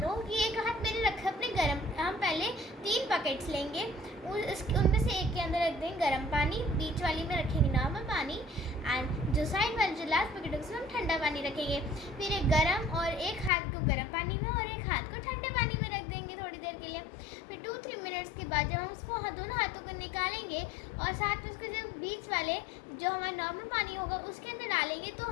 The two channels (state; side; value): drops out; right; at 13.5 s